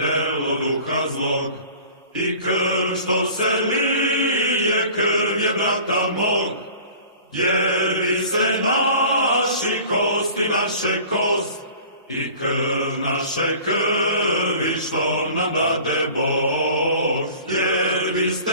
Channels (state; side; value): inverted; both; correlation -0.44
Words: duha zlog, i krv što se lije, krv je brata mog. Jer vi ste naši kosti, naše kost, i krv naše krvi što nam dade Bog. Jer vi